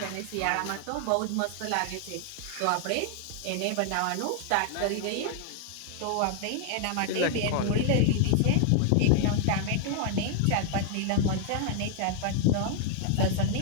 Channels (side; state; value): both; different; correlation 0.00